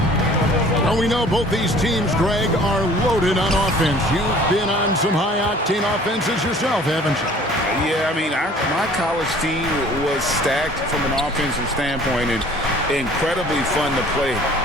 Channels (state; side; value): normal; both; correlation 0.51